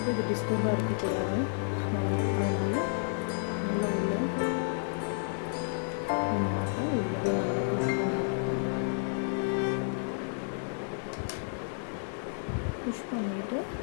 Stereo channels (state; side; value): silent; right; 57 dB below the other